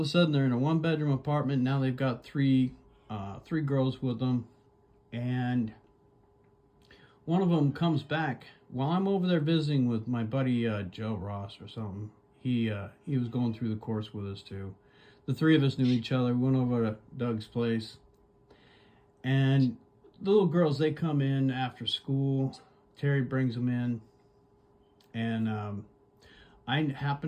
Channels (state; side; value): identical; both; correlation 1.00